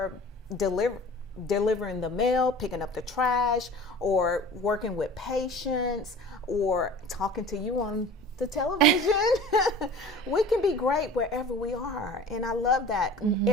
delivering the mail, picking up the trash, or working with patients, or talking to you on the television. We can be great wherever we are, and I love that.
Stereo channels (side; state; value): both; normal; correlation 0.42